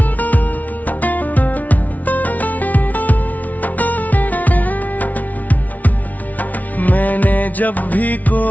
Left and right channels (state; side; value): late; right; 0.074 ms